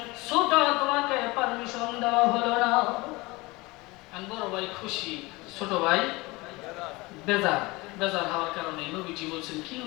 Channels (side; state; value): right; quieter; 23.1 dB